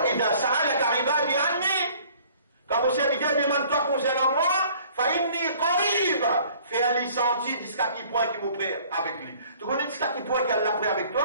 idha sa'alaka ibadi anni, quand vos serviteurs demandent toi concernant moi, fa inni qarib, fait un senti jusqu'à qui point qui m'ont pris avec lui. Tu connais jusqu'à qui point qu'elle l'a pris avec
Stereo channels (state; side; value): inverted; both; correlation -0.54